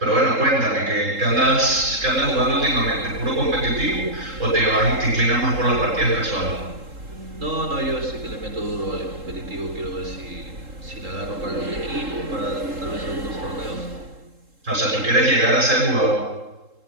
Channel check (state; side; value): late; left; 3.7 ms